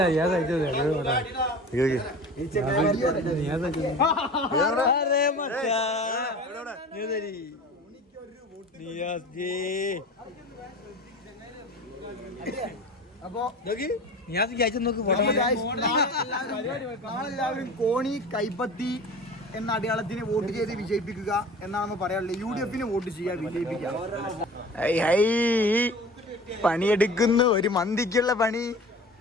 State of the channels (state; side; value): normal; both; correlation 0.38